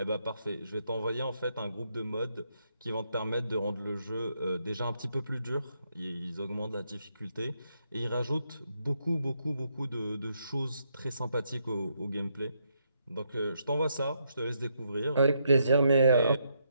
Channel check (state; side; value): inverted; both; correlation -0.77